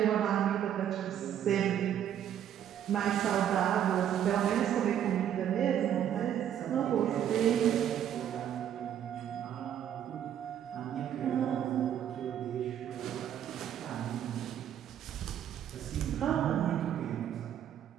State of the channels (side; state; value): left; quieter; 10.1 dB